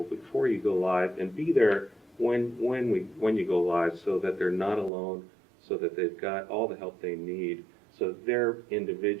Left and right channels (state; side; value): drops out; left; at 4.9 s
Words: before you go live, and be there when you go live, so that they're not alone, so that they've got all the help they need, so they're